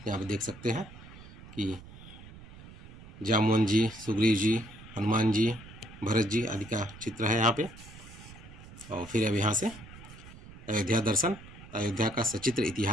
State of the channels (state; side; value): noise; right; rumble, 17 dB below the sound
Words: यहाँ पे देख सकते हैं कि जामुन जी, सुग्रीव जी, हनुमान जी, भरत जी आदि का चित्र है यहाँ पे। और फिर अब यहाँ से अयोध्या दर्शन, अयोध्या का सचित्र